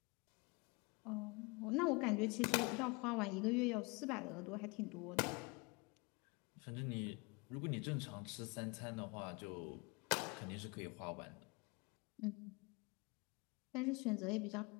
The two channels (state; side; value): quieter; right; 28.2 dB